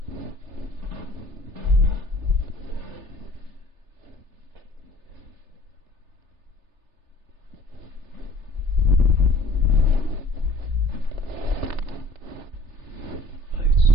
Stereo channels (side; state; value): left; late; 3.3 ms